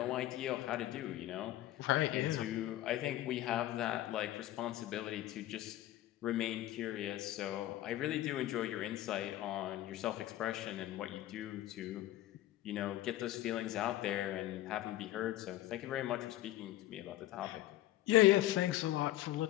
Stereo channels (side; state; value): right; quieter; 14.7 dB